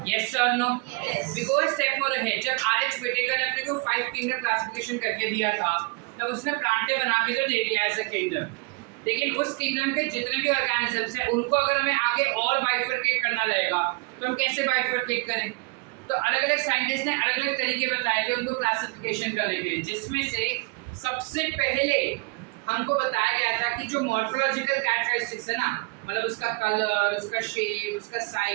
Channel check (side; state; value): left; quieter; 28.5 dB